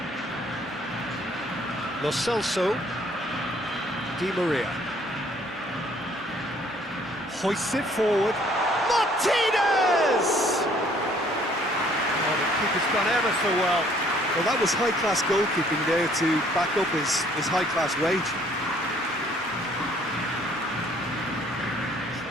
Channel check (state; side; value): normal; both; correlation 0.61